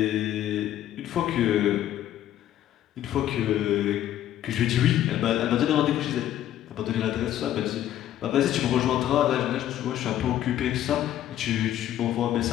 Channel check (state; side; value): quieter; right; 12.1 dB